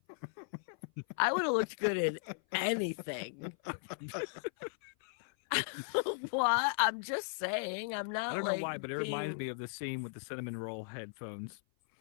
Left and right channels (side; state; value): right; silent; 53 dB below the other